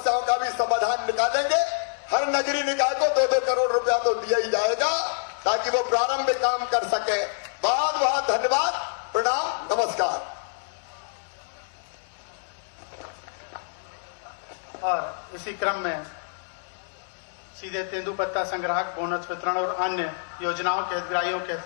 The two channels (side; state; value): right; silent; digital silence